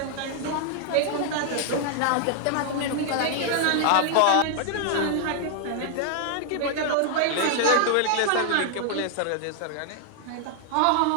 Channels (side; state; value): both; different; correlation 0.00